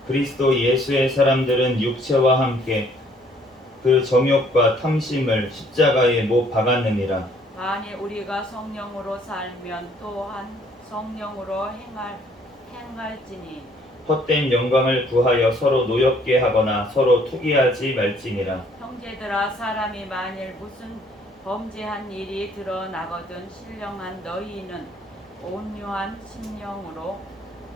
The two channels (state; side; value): normal; both; correlation 0.62